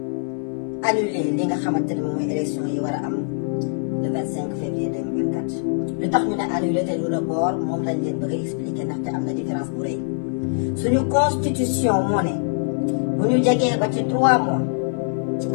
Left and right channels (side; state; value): right; silent; 56 dB below the other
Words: annuler li nga xamante ne moom mooy élection yi war a am le 25 février 2024. lu tax ñu ne annuler te du report moom lañ leen bëgg a expliquer ndaxte am na différence bu rëy suñu constitution moo ne bu ñu jegee ba ci 3 mois ci